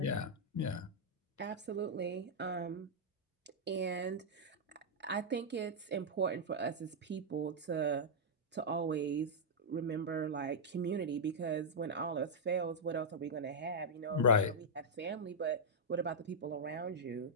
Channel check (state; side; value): normal; both; correlation -0.07